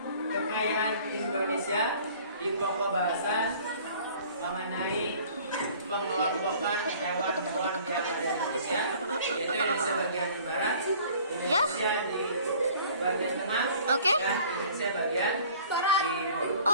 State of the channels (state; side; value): inverted; both; correlation -0.50